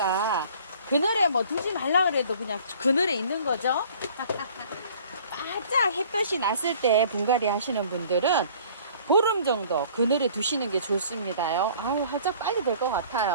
그늘에 뭐 두지 말라 그래도 그냥 그늘에 있는 거죠. 바짝 햇볕이 났을 때 분갈이 하시는 분들은 보름 정도 그늘에 두시는 게 좋습니다요. 아유, 활짝 빨리 될 것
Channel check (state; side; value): inverted; both; correlation -0.52